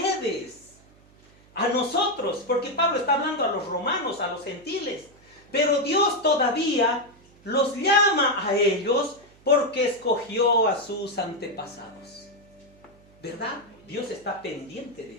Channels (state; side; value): noise; right; hum, 28 dB below the sound